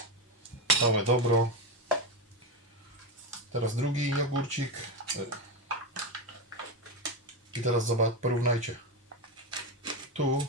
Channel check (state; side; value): normal; both; correlation 0.13